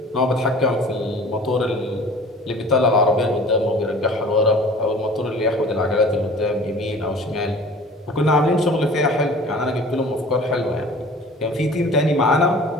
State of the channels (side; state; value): both; normal; correlation 0.45